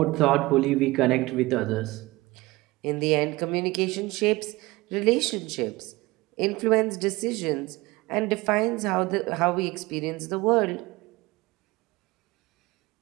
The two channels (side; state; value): left; quieter; 21.1 dB